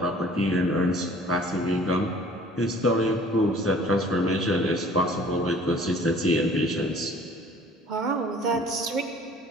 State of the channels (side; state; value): both; normal; correlation 0.51